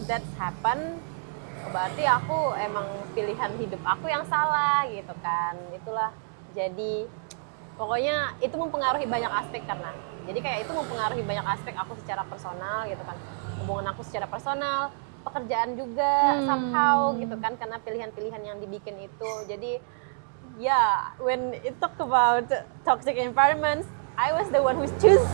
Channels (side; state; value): left; silent; 60 dB below the other